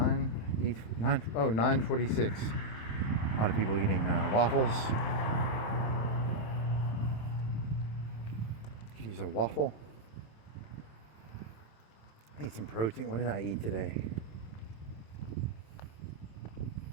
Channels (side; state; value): right; late; 27 ms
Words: A lot of people eating waffles. Could use a waffle. Eat some protein. What did I eat today?